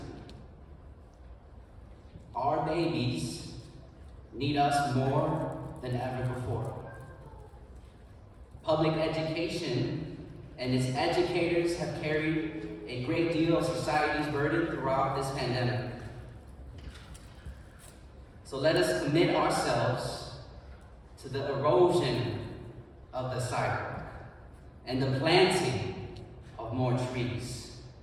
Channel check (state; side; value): identical; both; correlation 1.00